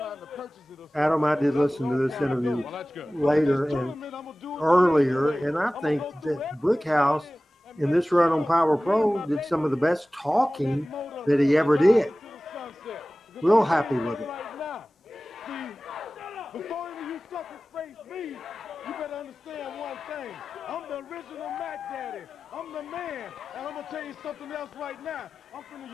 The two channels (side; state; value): both; normal; correlation 0.97